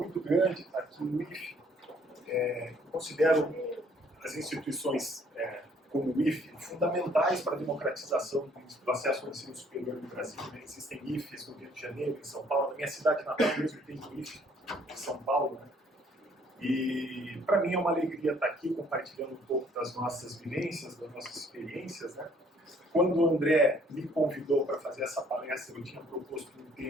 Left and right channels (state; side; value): normal; both; correlation 0.62